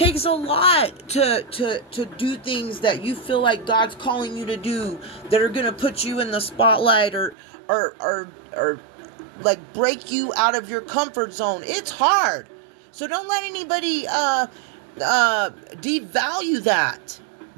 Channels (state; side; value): drops out; left; at 7.4 s